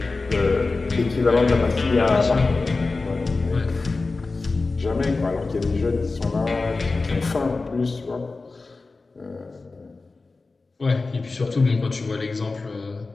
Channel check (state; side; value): quieter; right; 3.7 dB